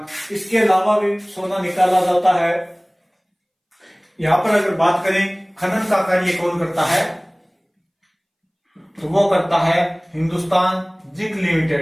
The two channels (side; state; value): both; identical; correlation 1.00